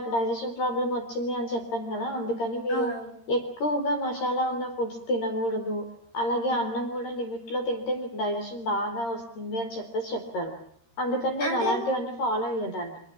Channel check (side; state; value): right; late; 13 ms